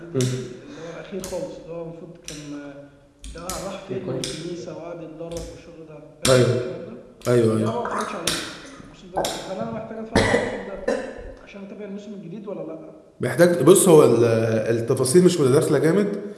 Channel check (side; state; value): both; identical; correlation 1.00